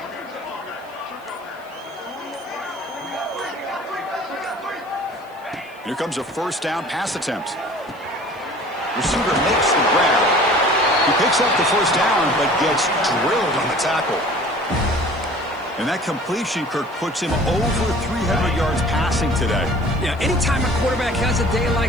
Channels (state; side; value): noise; left; hiss, 30 dB below the sound